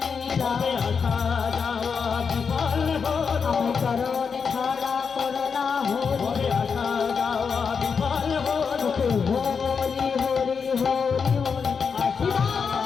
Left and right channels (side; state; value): right; quieter; 5.9 dB